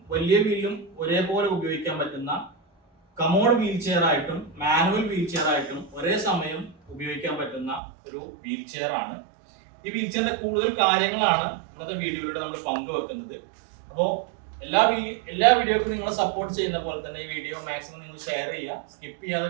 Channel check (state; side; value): drops out; left; at 7.8 s